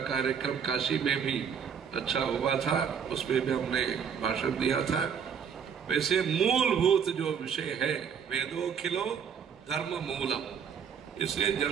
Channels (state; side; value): quieter; left; 7.2 dB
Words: कार्यक्रम काशी में भी अच्छा हुआ था, उसमें भी हमने भाषण दिया था। वैसे मूलभूत जो विषय है, वेदोखिलो धर्म मूलम, इसलिए